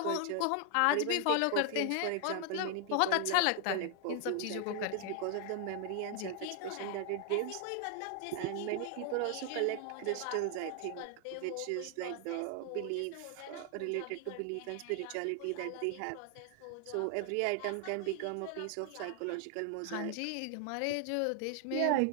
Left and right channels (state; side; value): different; both; correlation 0.00